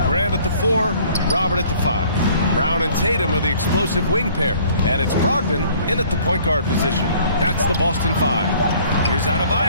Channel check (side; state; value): both; inverted; correlation -0.55